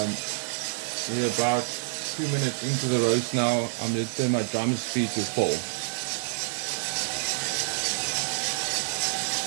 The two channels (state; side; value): silent; left; digital silence